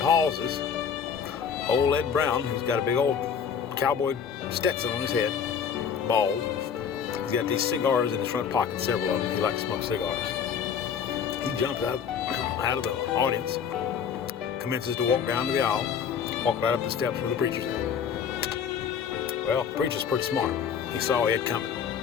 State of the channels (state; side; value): quieter; right; 7.3 dB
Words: old Ed Brown, who's got a big old cowboy Stetson on his head, bald, he's got these cigars in his front pocket, several of them. He likes to smoke cigars. He jumps out of the audience, commences to walk down to the aisle, walk right up the steps where the preacher's at. Well, the preacher's pretty smart. He saw Ed coming.